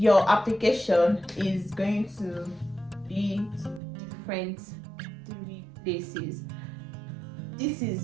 application is going to be different 3 places. This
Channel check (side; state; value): left; drops out; at 3.8 s